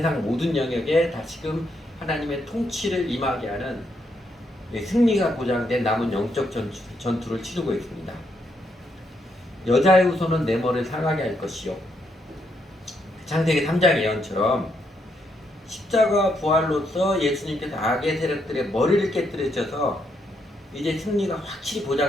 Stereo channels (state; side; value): normal; both; correlation 0.77